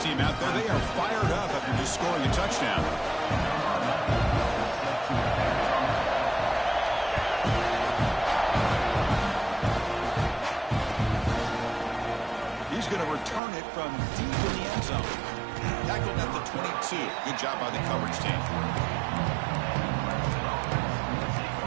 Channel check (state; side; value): drops out; left; at 13.4 s